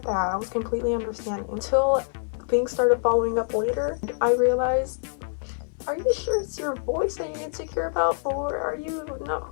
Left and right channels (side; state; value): right; silent; 57 dB below the other